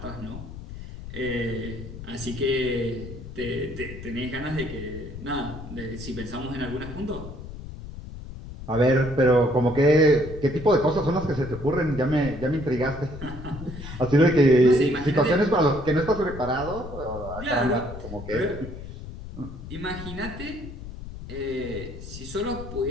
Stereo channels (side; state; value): left; noise; rumble, 11 dB below the sound